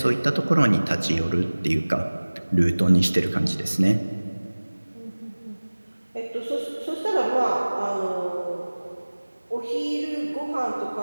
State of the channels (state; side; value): inverted; both; correlation -1.00